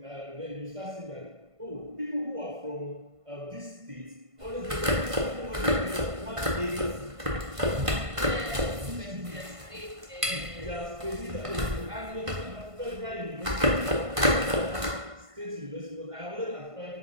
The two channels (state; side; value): late; left; 1.5 ms